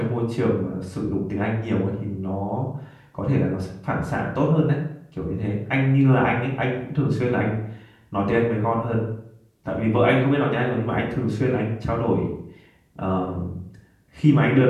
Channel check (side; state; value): both; identical; correlation 1.00